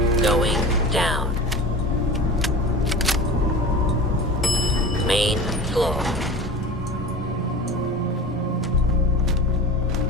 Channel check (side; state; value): both; normal; correlation 0.34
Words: Going down. Main floor.